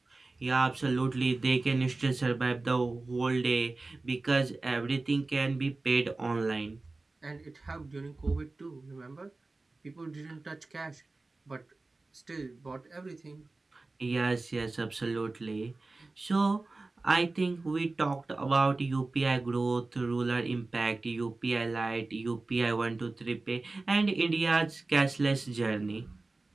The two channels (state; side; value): quieter; left; 3.3 dB